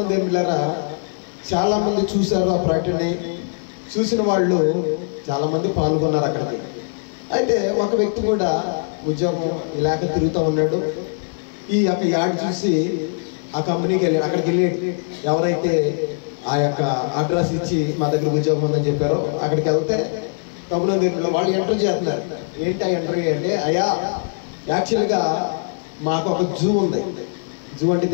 బిడ్డలారా, చాలామంది చూశారు ఆ ప్రకటనని. చూసిన వాళ్ళు చాలామంది పాల్గొన్నారు అక్కడికి. అయితే ఒక వ్యక్తి కూడా ఉద్యోగం లేక తిరుగుతూ ఉన్నాడు. ఈ యొక్క యాడ్ చూసి ఆ కంపెనీకి వెళ్ళి అక్కడికి వెళ్ళి ఎవరైతే ఆ యొక్క అడ్రస్ ఇచ్చి మా దగ్గర ఉద్యోగం ఉందని చెప్పారో అక్కడికి వెళ్తే ప్రభునందు వాళ్ళు ఇంటర్వ్యూ చేస్తున్నారు. ఏంటి ఆ ఇంటర్వ్యూ అంటే, అయ్యా యాక్చువల్గా మాకు ఒక జూ ఉంది. జూ అంటే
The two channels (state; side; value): silent; right; digital silence